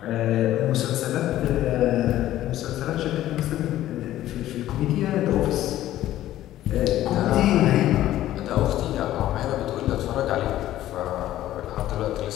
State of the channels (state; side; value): quieter; right; 13.7 dB